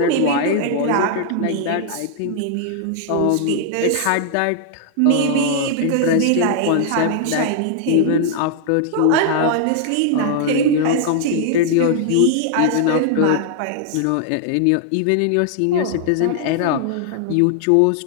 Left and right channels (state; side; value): different; both; correlation 0.00